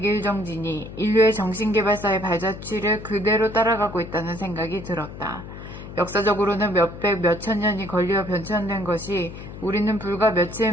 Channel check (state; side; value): noise; left; hum, 12 dB below the sound